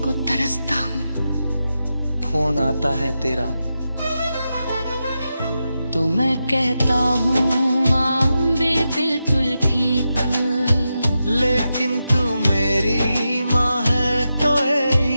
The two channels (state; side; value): inverted; both; correlation -0.89